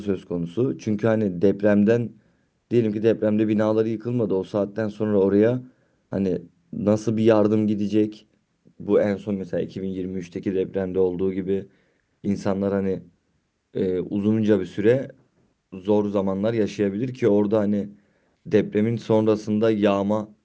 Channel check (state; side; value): identical; both; correlation 1.00